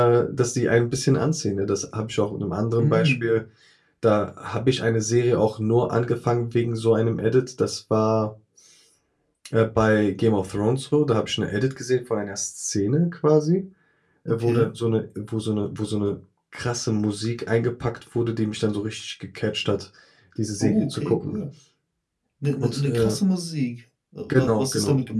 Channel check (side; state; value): both; identical; correlation 1.00